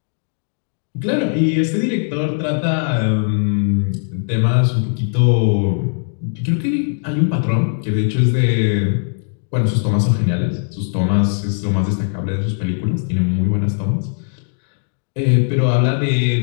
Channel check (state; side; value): silent; right; digital silence